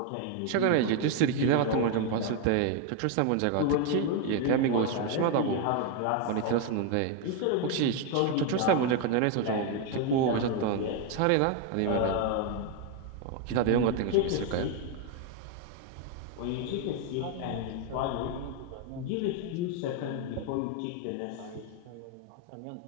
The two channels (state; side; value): different; both; correlation 0.01